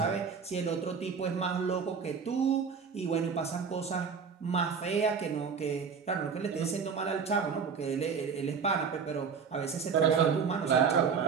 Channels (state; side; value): quieter; left; 6.0 dB